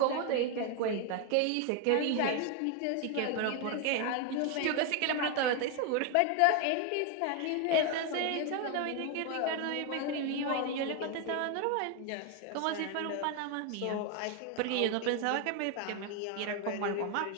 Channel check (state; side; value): different; both; correlation 0.01